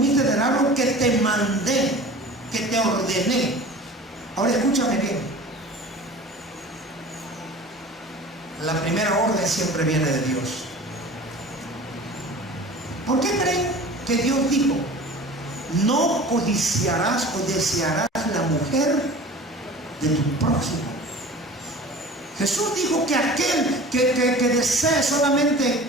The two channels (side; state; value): both; normal; correlation 0.40